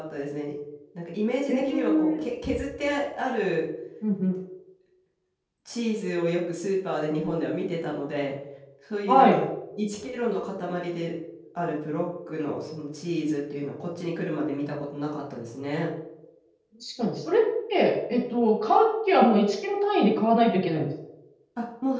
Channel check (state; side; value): identical; both; correlation 1.00